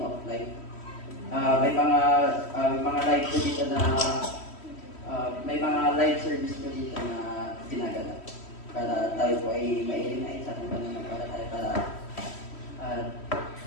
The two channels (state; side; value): late; right; 3.1 ms